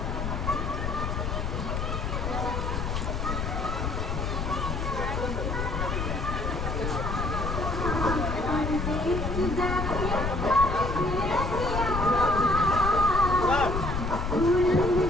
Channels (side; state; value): left; noise; rumble, 2 dB below the sound